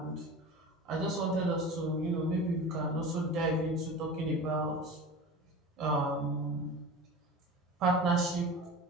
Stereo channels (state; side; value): normal; both; correlation 0.33